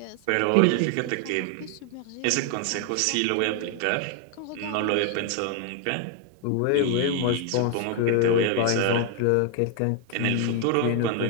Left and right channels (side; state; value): both; different; correlation 0.01